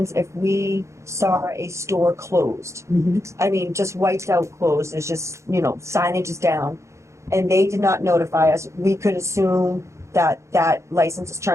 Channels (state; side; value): late; left; 0.14 ms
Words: if we saw a store closed, I mean, just wiped out closed, it's just, signage is down, and they did not notify us, we could assume that that license is